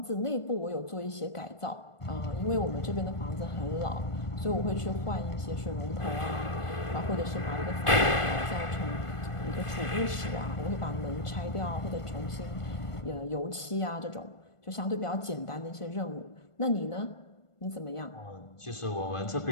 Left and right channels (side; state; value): right; late; 1.5 ms